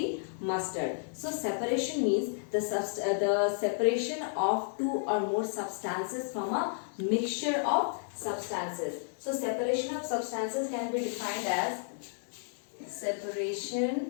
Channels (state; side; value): silent; right; digital silence